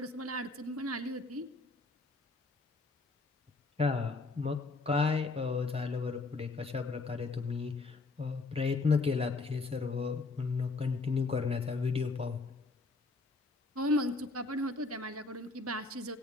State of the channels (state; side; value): quieter; right; 3.5 dB